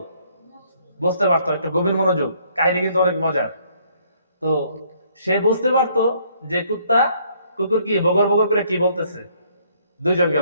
বুঝতে পারতো। একটা গভীর মনোযোগ, কাহিনী কিন্তু অনেক মজার। তো সে বুঝতে পারতো যে কুকুর কি বগর বগর করে কি বলতেছে। দুইজন গেল,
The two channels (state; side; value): inverted; both; correlation -0.65